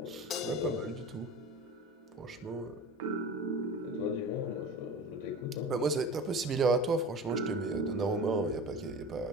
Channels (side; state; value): both; normal; correlation 0.35